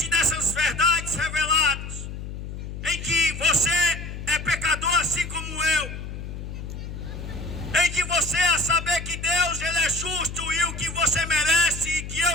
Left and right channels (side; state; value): left; noise; hum, 8 dB below the sound